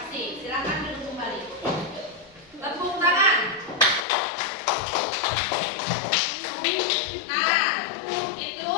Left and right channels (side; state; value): right; drops out; at 4.0 s